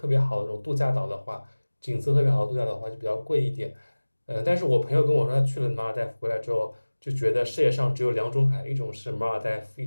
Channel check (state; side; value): inverted; both; correlation -1.00